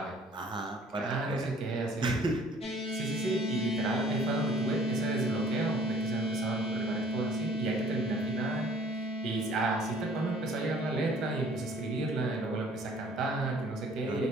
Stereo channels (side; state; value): both; normal; correlation 0.54